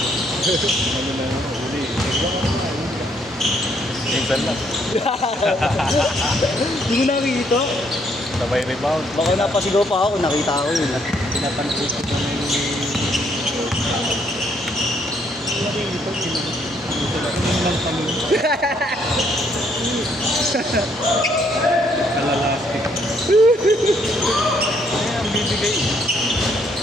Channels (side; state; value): both; normal; correlation 0.69